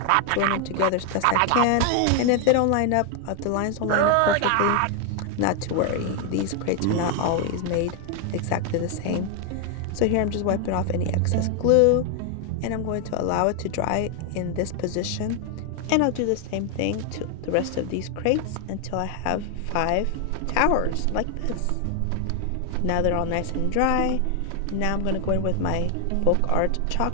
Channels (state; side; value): different; both; correlation 0.00